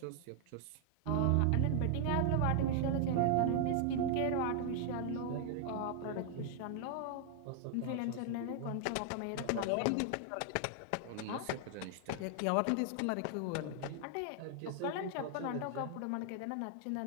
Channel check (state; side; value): different; both; correlation 0.00